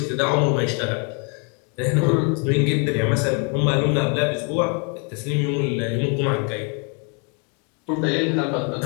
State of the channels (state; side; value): quieter; right; 37.0 dB